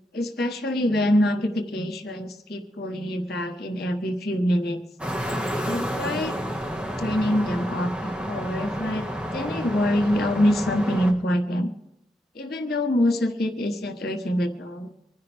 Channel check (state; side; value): normal; both; correlation 0.82